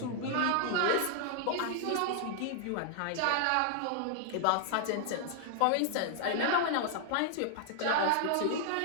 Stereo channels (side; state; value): both; different; correlation 0.00